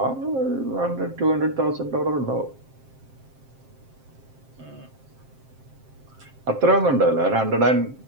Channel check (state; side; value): late; left; 7.6 ms